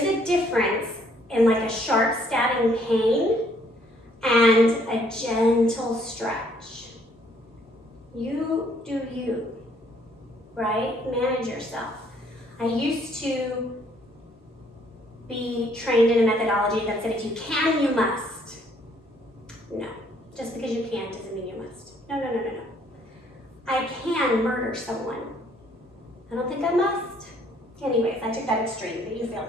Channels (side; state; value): both; normal; correlation 0.65